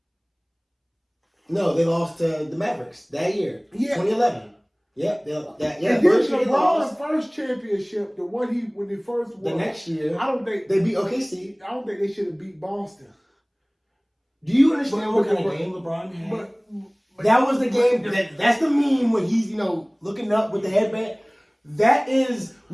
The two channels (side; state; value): both; identical; correlation 1.00